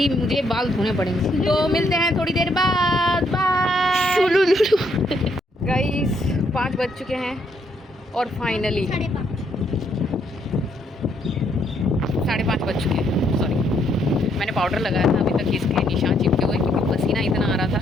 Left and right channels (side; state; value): both; normal; correlation 0.72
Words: मुझे बाल धोने पड़ेंगे। तो मिलते हैं थोड़ी देर बाद, बाय। गाइस 5 बज चुके हैं और फाइनली 5:30 बज चुके हैं। सॉरी, मैंने पाउडर लगाया था, अभी तक इसके निशान चिपके हुए क्योंकि पसीना इतना आ रहा था।